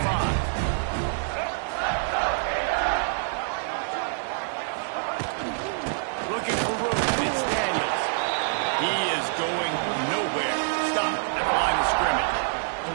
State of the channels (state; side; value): silent; left; 61 dB below the other